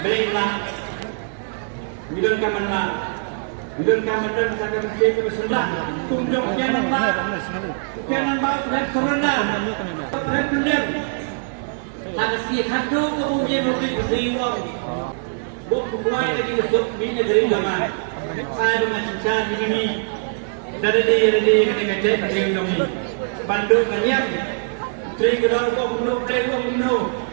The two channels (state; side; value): silent; left; 63 dB below the other